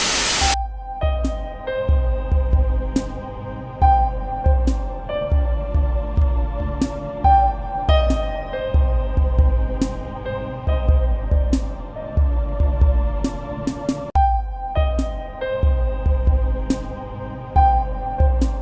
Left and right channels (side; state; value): both; identical; correlation 1.00